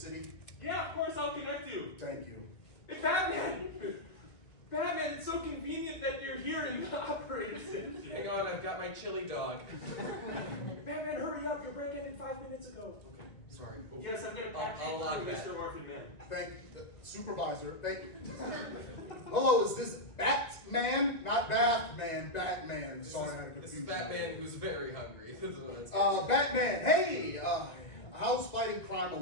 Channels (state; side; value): late; right; 2.2 ms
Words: Yeah, of course I'll connect you. Thank you. Hey, Batman! Batman, it's so convenient that you're here and you operate it. Hang on, I've got my chili dog. Batman, hurry up! You're breaking in 5 minutes ago. Okay. Sorry. Yes, I'm gonna I'll patch you log through, that. Mr. Orphan Man. Thank the supervisor. Thank you. Hello, is this Batman? Not Bathman. Batman. Sorry, I had a This confusion. is Batman who's very hungry. This is what it's Batman. Hey, how's fighting crime